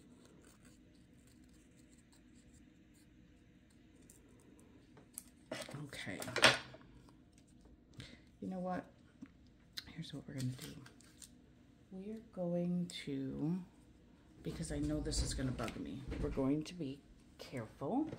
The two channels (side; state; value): both; identical; correlation 1.00